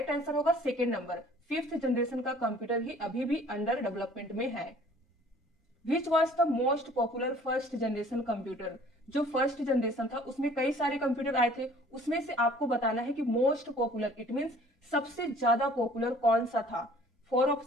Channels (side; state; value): both; normal; correlation 0.52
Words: आंसर होगा 2nd नंबर, 5th जनरेशन का कंप्यूटर ही अभी भी अंडर डेवलपमेंट में है। Which was the most popular first generation computer. जो फर्स्ट जनरेशन था उसमें कई सारे कंप्यूटर आए थे, उसमें से आपको बताना है कि मोस्ट पॉपुलर, इट मींस सबसे ज्यादा पॉपुलर कौन सा था। 4